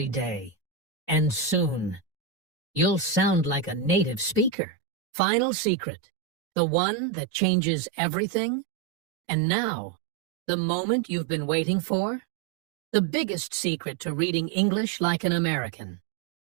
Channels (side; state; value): left; drops out; at 4.5 s